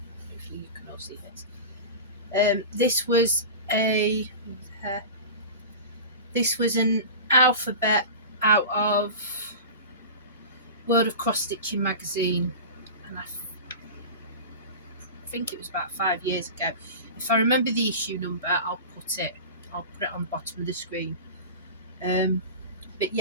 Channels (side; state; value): both; inverted; correlation -0.31